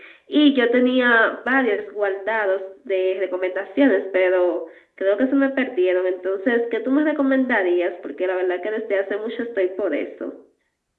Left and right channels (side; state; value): both; identical; correlation 1.00